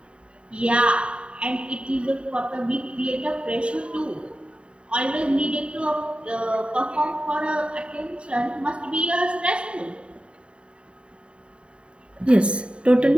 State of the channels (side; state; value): left; late; 0.056 ms